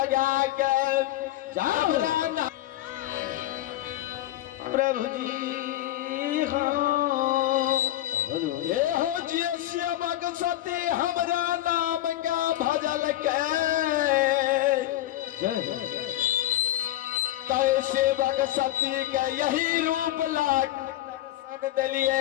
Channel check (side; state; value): right; quieter; 14.3 dB